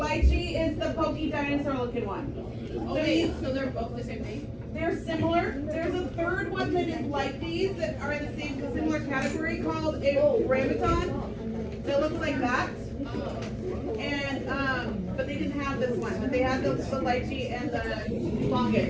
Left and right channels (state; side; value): identical; both; correlation 1.00